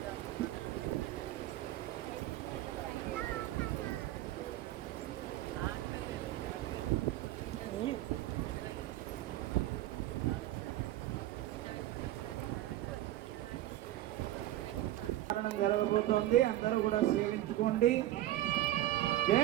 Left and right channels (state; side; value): quieter; left; 14.6 dB